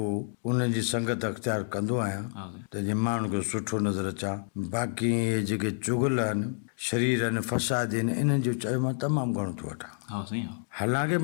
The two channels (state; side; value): silent; right; digital silence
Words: उनजी संगत अख़्तियार कंदो आहियां हा साईं त जीअं माण्हू खे सुठो नज़र अचां बाक़ी इहे जेके चुगल आहिनि शरीर आहिनि फसाद आहिनि इन्हनि जो चयो मां तमामु घणो थो वठां हा साईं हा हालांकि